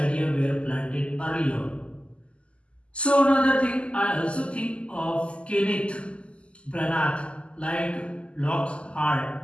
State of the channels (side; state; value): right; late; 0.055 ms